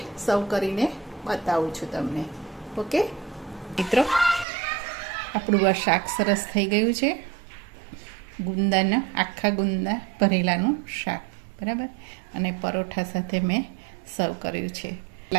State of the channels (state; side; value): drops out; left; at 4.5 s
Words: સર્વ કરીને બતાવું છું તમને. ઓકે મિત્રો, આપણું આ શાક સરસ થઈ ગયું છે. ગુંદાના આખા ગુંદા ભરેલાનું શાક. બરાબર. અને પરોઠા સાથે મેં સર્વ કર્યું છે.